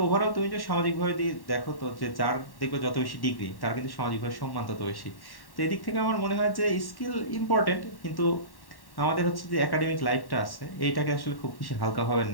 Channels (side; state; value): right; late; 1.1 ms